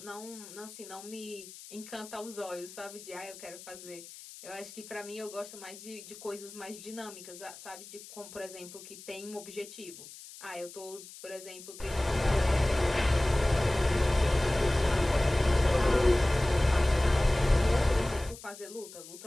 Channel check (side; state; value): left; noise; hiss, 16 dB below the sound